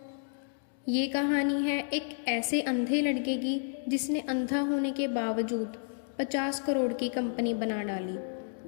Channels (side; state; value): right; silent; digital silence